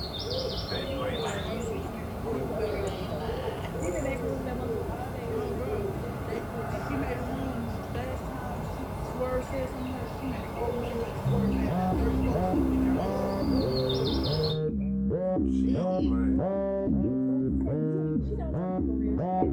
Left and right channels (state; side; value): identical; both; correlation 1.00